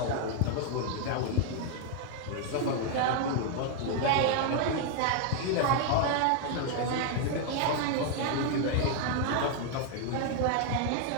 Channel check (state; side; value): different; both; correlation 0.00